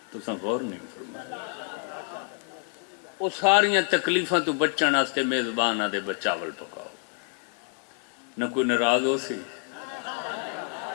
تو سن غور نہیں فرمایا۔ وہ ساریاں تکلیفاں تو بچن واسطے میزبان آدھے بچاول پکاؤ، نہ کوئی ناراض ہو سی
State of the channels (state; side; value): quieter; right; 38.3 dB